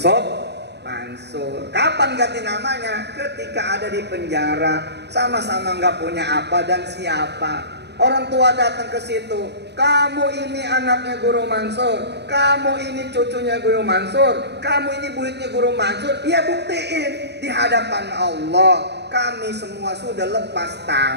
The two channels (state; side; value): late; left; 0.49 ms